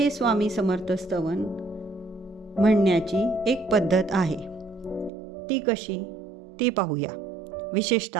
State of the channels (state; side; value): drops out; left; at 5.1 s